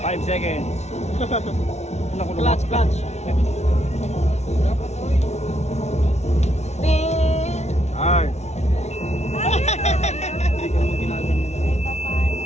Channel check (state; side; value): late; right; 0.32 ms